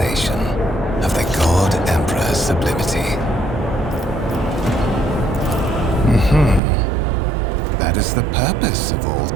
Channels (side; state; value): left; drops out; at 6.6 s